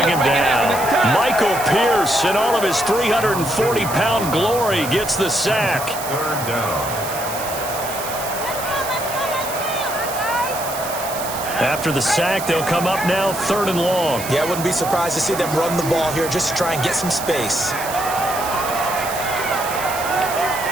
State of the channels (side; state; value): right; noise; hiss, 9 dB below the sound